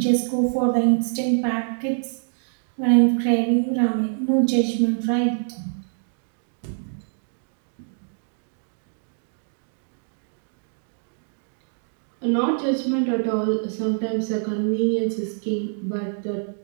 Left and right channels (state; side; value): silent; left; digital silence